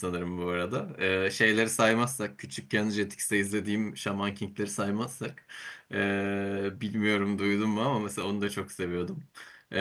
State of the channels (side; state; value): both; identical; correlation 1.00